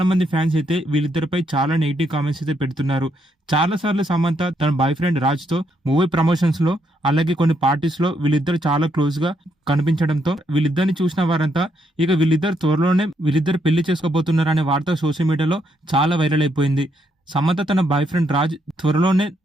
మంది ఫ్యాన్స్ అయితే వీళ్ళిద్దరిపై చాలా నెగిటివ్ కామెంట్స్ అయితే పెడుతున్నారు. చాలా సార్లు సమంత తన బాయ్ ఫ్రెండ్ రాజ్ తో మూవీ ప్రమోషన్స్ లో అలాగే కొన్ని పార్టీస్ లో వీళ్ళిద్దరు చాలా క్లోజ్ గా కనిపించడంతో వీళ్ళిద్దరిని చూసిన వారంతా ఇక వీళ్ళిద్దరు త్వరలోనే వీళ్ళిద్దరు పెళ్లి చేసుకోబోతున్నారనే వార్త సోషల్ మీడియాలో చాలా వైరల్ అయిపోయింది. సమంత తన బాయ్ ఫ్రెండ్ రాజ్ త్వరలోనే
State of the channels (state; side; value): normal; both; correlation 0.76